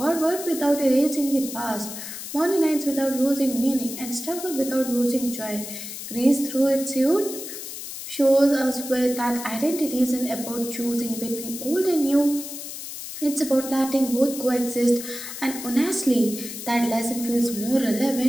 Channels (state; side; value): noise; left; hiss, 9 dB below the sound